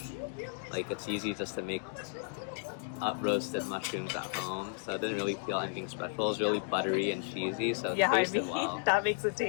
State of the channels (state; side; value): silent; right; digital silence